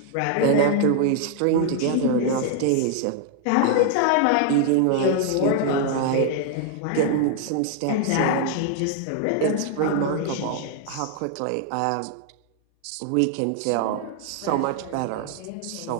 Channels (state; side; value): different; both; correlation 0.00